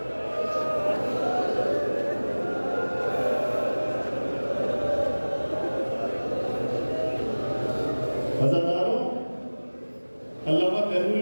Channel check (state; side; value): inverted; both; correlation -1.00